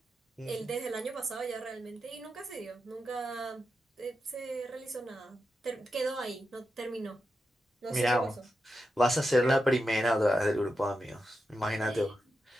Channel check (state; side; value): normal; both; correlation 0.88